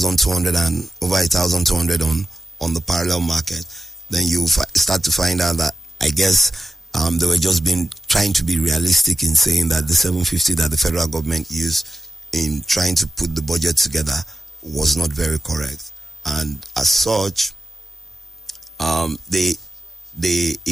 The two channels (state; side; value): normal; both; correlation 0.94